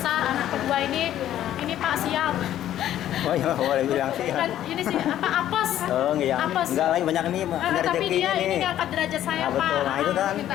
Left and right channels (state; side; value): quieter; right; 12.0 dB